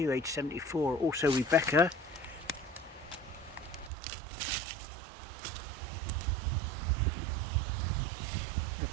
age 74. Also Rebecca.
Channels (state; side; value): drops out; left; at 3.9 s